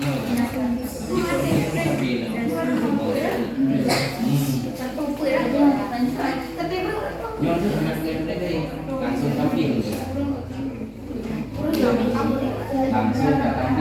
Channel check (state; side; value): identical; both; correlation 1.00